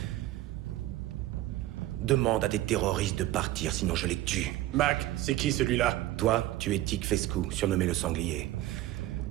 Demande à des terroristes de partir, sinon je les tue. Mac, c'est qui celui-là? Toi, tu es Tic Fescu, surnommé le sanglier.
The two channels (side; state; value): left; quieter; 15.5 dB